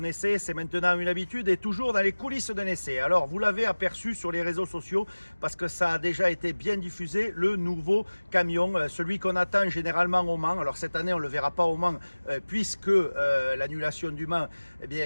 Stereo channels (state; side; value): inverted; both; correlation -1.00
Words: c'est maintenant une habitude et toujours dans les coulisses d'un essai. Alors, vous l'avez aperçu sur les réseaux sociaux parce que ça a déjà été bien diffusé, le nouveau camion, celui qu'on attend généralement au Mans. Alors, cette année, on ne le verra pas au Mans puisque l'annulation du Mans